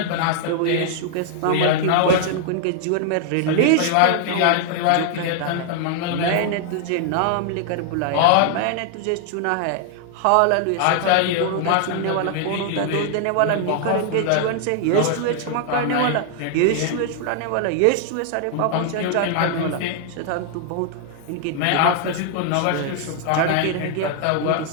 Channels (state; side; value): different; both; correlation 0.00